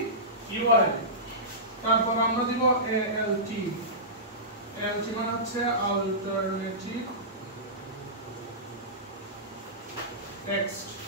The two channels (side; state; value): both; normal; correlation -0.19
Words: url তারপর আমরা দিব alt মানে হচ্ছে alternative text